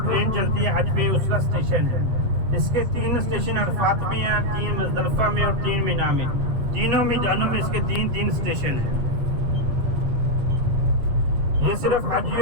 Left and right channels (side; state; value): left; late; 8.0 ms